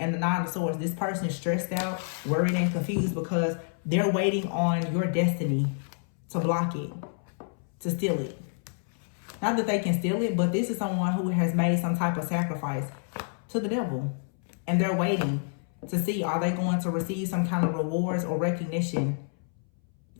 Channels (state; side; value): silent; right; 59 dB below the other